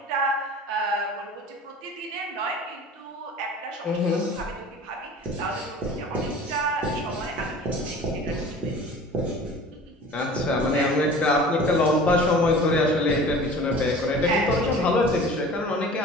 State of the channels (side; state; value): both; normal; correlation 0.42